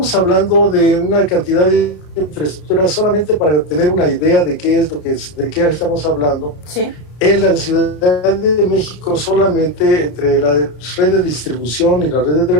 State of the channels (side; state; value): right; late; 33 ms